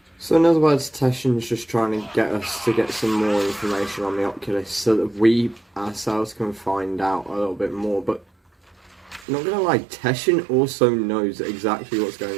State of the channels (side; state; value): left; drops out; at 9.2 s